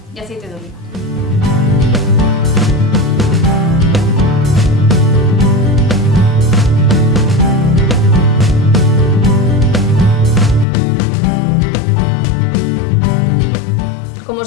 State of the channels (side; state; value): right; drops out; at 10.7 s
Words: y aceite de oliva. Como